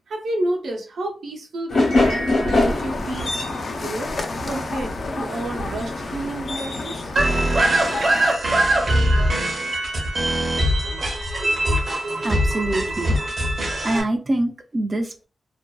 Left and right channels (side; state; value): both; normal; correlation 0.90